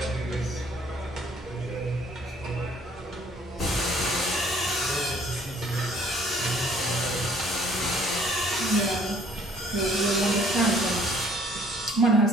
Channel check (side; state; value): both; normal; correlation 0.58